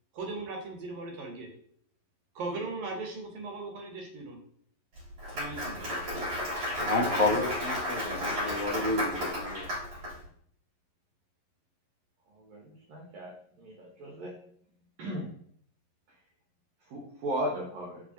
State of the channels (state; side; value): late; left; 11 ms